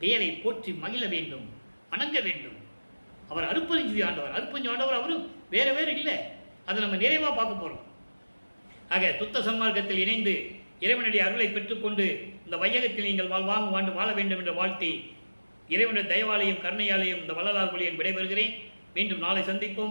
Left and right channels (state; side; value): inverted; both; correlation -1.00